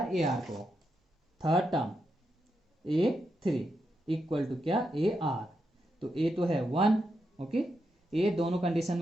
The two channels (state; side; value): normal; both; correlation 0.84